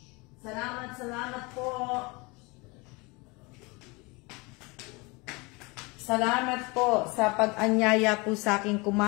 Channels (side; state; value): right; quieter; 26.4 dB